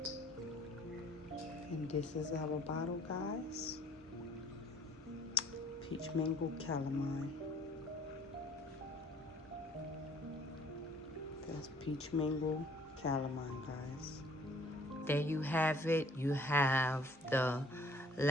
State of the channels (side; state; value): both; normal; correlation 0.58